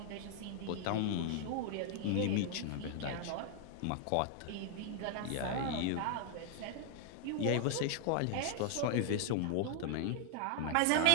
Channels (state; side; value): different; both; correlation 0.00